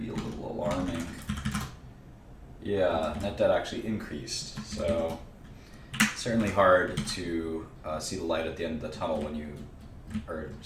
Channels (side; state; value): both; identical; correlation 1.00